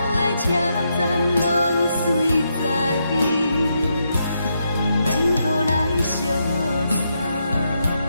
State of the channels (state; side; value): inverted; both; correlation -0.81